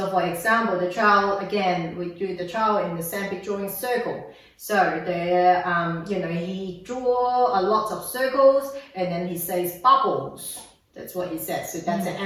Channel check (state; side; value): identical; both; correlation 1.00